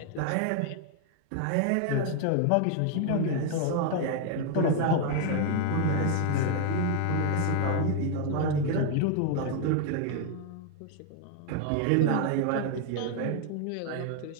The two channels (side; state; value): both; different; correlation 0.01